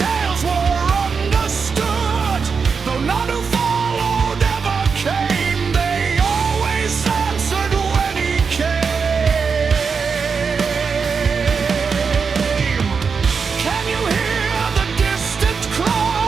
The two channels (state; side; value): quieter; left; 5.5 dB